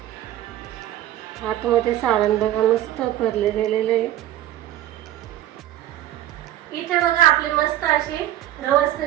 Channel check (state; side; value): quieter; left; 13.2 dB